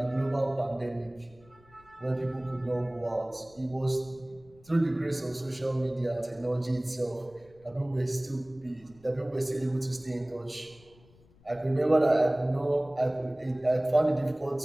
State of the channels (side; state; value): left; noise; rumble, 27 dB below the sound